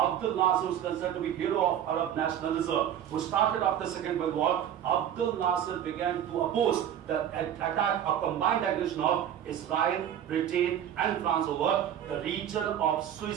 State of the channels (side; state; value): left; quieter; 10.1 dB